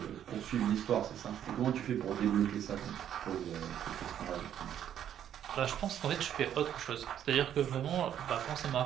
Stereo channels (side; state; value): left; quieter; 10.1 dB